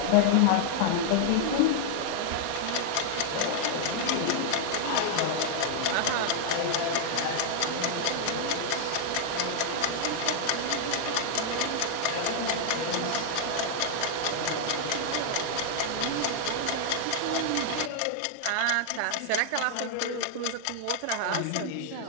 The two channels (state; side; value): different; both; correlation 0.00